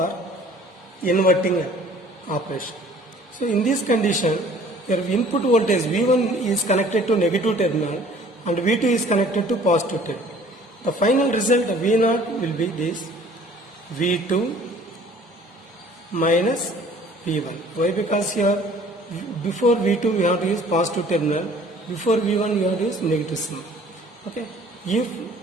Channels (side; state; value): both; normal; correlation 0.53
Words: inverting operation. So in this condition, your input voltage V1 is connected to negative terminal and V2 is connected to positive terminal. The final result V0 will be this V2 minus V1. Why? Because here before V2 we have to use positive terminal, before V1 we have to use negative symbol. Okay. If